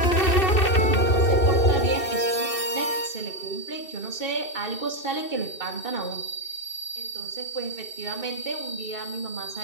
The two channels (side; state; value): right; late; 2.6 ms